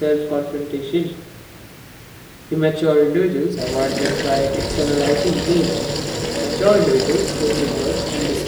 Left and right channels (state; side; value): identical; both; correlation 1.00